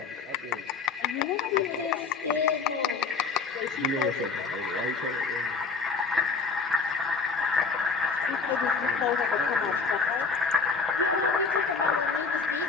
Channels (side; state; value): right; quieter; 5.0 dB